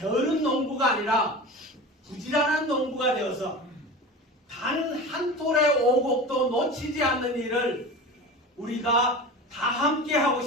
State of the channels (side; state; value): both; normal; correlation 0.32